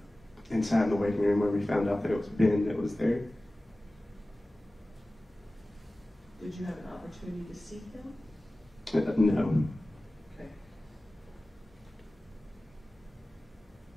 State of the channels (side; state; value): both; normal; correlation 0.97